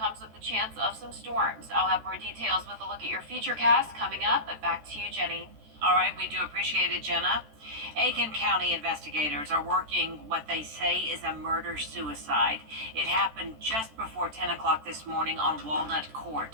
with the chance of some storms. I'll have more details with a look at your futurecast coming up, but back to you, Jenny. All right, we do appreciate it, Jenna. Aiken County investigators are working what they say is a murder-suicide. It happened just before 10 o'clock this morning on Walnut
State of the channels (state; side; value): late; left; 13 ms